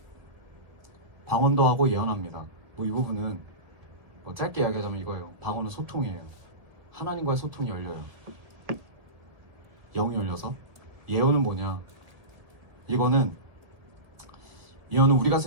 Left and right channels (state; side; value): late; left; 1.9 ms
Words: 방언도 하고 예언합니다. 뭐 이 부분은 뭐 짧게 이야기하자면 이거예요. 방언은 소통이에요. 하나님과의 소통이 열려요. 영이 열려서. 예언은 뭐냐? 예언은 우리가